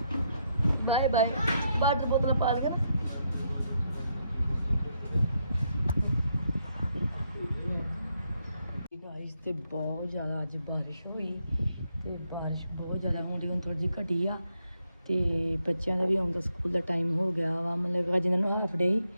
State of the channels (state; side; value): inverted; both; correlation -0.78